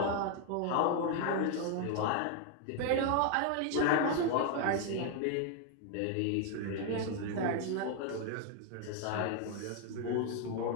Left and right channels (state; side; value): different; both; correlation 0.00